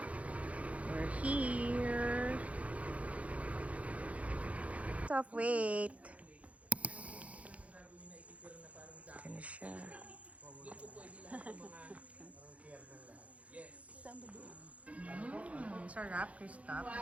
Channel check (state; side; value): late; left; 0.065 ms